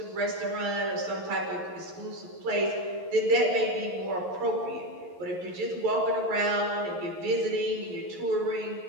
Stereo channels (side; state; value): left; late; 11 ms